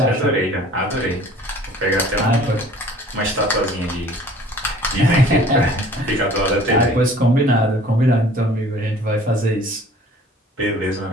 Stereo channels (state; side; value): normal; both; correlation 0.50